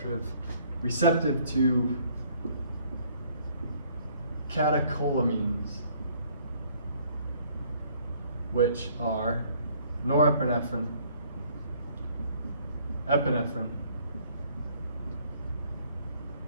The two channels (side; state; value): both; inverted; correlation -0.61